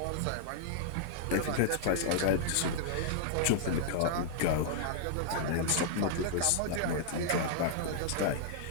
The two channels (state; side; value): different; both; correlation -0.01